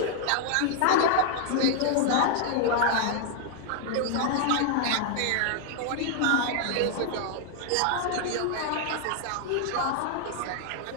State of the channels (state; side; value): different; both; correlation 0.00